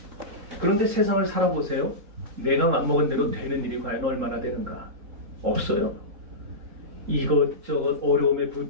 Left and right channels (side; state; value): left; late; 3.7 ms